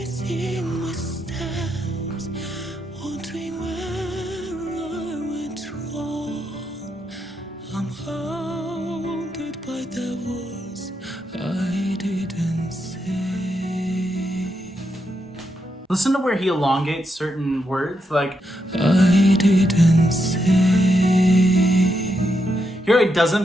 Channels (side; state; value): both; normal; correlation 0.82